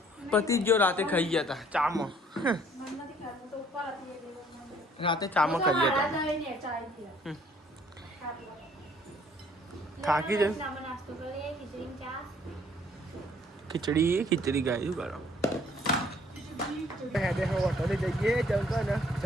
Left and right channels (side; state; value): both; normal; correlation 0.60